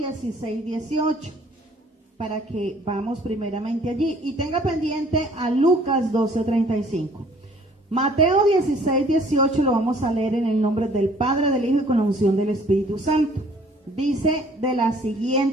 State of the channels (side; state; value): both; normal; correlation 0.57